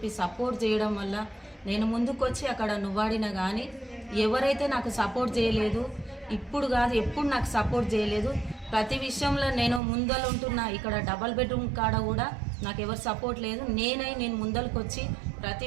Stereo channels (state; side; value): drops out; left; at 9.8 s